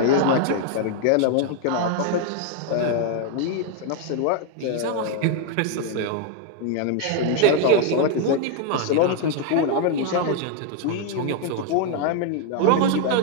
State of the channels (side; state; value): both; different; correlation 0.00